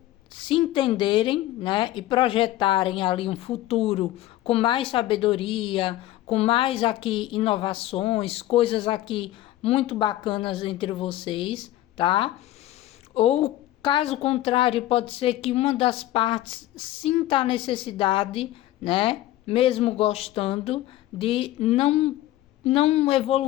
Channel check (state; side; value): quieter; right; 14.9 dB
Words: se entenderem, né? E projetarem ali um futuro com mais sabedoria, com mais aqui inovações, coisas aqui muito bacanas entre vocês, tá? Ou caso contrário, pode ser que uma das partes sinta a necessidade, né? Mesmo gostando de não